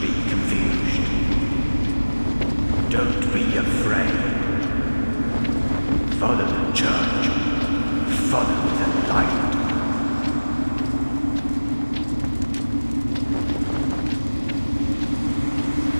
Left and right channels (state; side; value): inverted; both; correlation -1.00